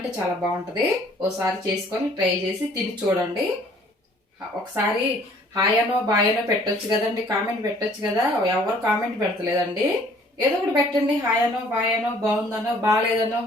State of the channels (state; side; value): normal; both; correlation 0.57